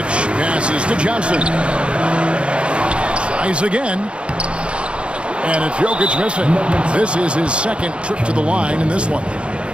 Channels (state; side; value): late; left; 0.057 ms